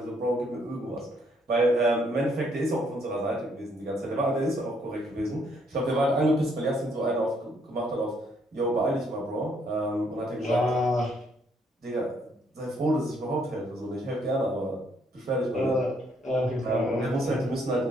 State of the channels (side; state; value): both; normal; correlation 0.69